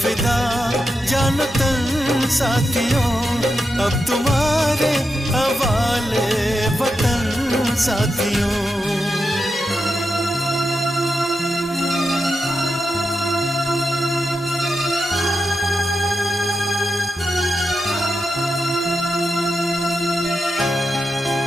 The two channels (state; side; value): normal; both; correlation 0.87